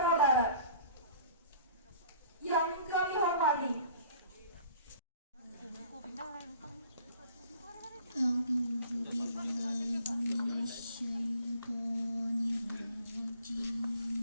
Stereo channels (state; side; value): inverted; both; correlation -0.51